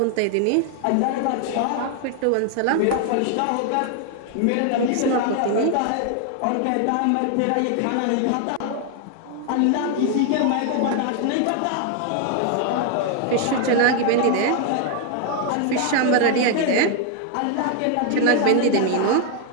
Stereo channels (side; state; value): both; different; correlation 0.00